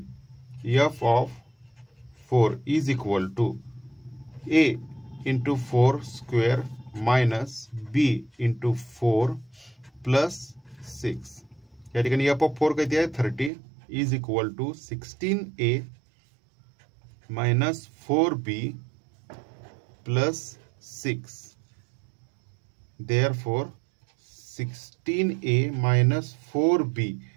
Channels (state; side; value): drops out; left; at 13.5 s